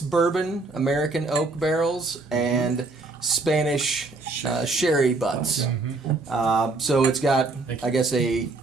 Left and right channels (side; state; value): left; quieter; 3.5 dB